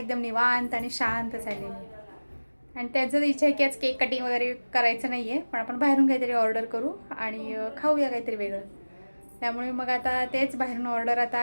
निवांत आणि शांत चाललेली आहे. आणि त्याचं इच्छा आहे की आज केक कटिंग वगैरे करायचं नाही आहे, पण आपण बाहेरून काहीतरी ऑर्डर करू आणि खाऊया काहीतरी वेगळं. त्यामुळे मग आता तेच बाहेरून ऑर्डर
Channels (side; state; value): both; inverted; correlation -1.00